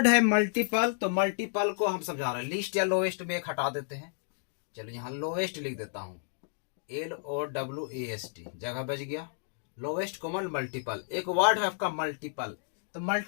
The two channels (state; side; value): silent; right; digital silence